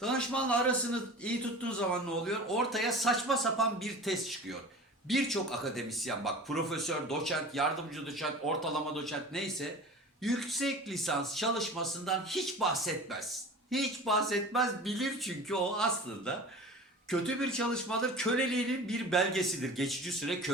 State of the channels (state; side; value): normal; both; correlation 0.37